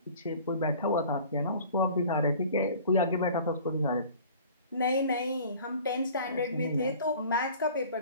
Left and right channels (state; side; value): inverted; both; correlation -0.47